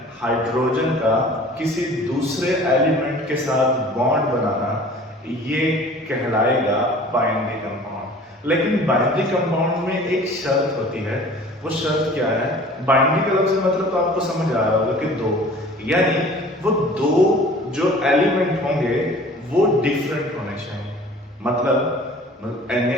हाइड्रोजन का किसी दूसरे एलिमेंट के साथ बॉन्ड बनाना, ये कहलाएगा बाइंडिंग कंपाउंड। लेकिन बाइंडिंग कंपाउंड में एक शर्त होती है। वो शर्त क्या है? बाइंडिंग का लफ्ज़ मतलब तो आपको समझ आ रहा होगा कि दो, यानी वो दो जो एलिमेंट होंगे वो डिफरेंट होने चाहिए। मतलब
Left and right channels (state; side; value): normal; both; correlation 0.46